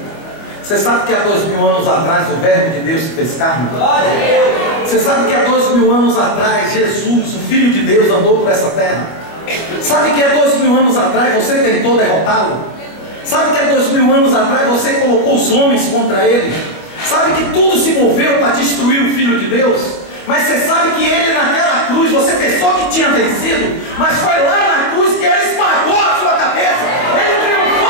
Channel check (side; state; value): right; late; 25 ms